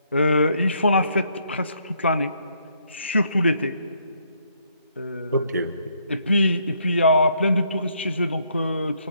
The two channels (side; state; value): both; inverted; correlation -0.71